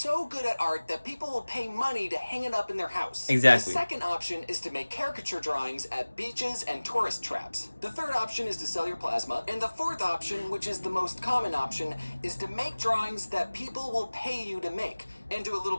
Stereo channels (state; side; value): inverted; both; correlation -1.00